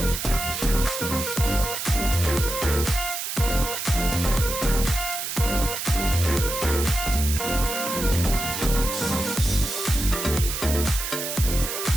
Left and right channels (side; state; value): right; noise; hiss, 4 dB below the sound